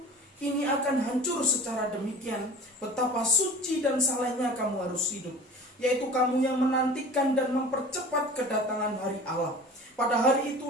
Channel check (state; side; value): normal; both; correlation 0.40